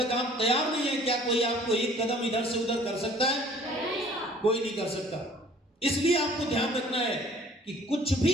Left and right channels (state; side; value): normal; both; correlation 0.53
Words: आप तैयार नहीं है, क्या कोई आपको एक कदम इधर से उधर कर सकता है? कोई नहीं कर सकता। इसलिए आपको ध्यान रखना है कि कुछ